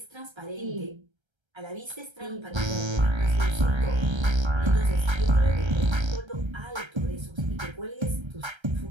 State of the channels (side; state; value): left; late; 1.3 ms